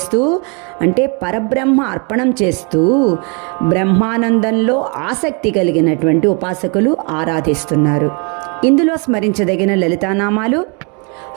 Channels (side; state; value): left; quieter; 34.4 dB